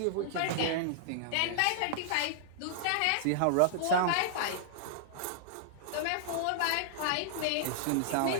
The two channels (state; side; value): different; both; correlation -0.01